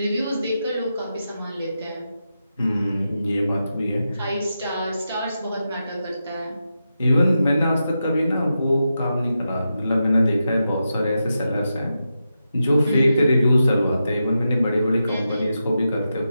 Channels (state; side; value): inverted; both; correlation -0.88